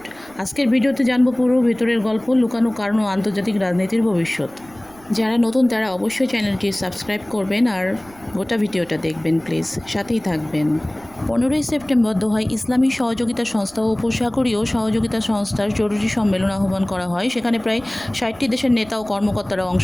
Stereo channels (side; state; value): right; noise; rumble, 25 dB below the sound